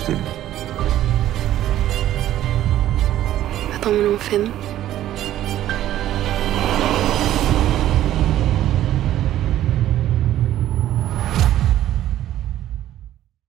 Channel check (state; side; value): quieter; left; 12.9 dB